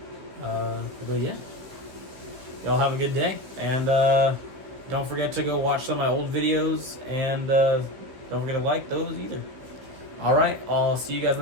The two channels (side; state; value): left; late; 15 ms